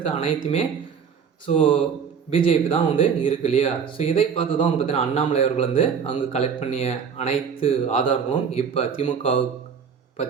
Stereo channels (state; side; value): quieter; left; 6.7 dB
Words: அனைத்துமே பிஜேபி தான் இருக்கு இல்லையா. இதை பார்த்து தான் பார்த்தீங்கன்னா அண்ணாமலை அவர்கள் அங்கே கலெக்ட் பண்ணிய அனைத்து ஆதாரங்களும் இப்போ திமுகவுக்கு